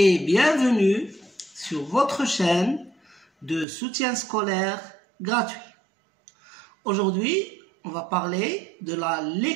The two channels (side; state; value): left; drops out; at 3.7 s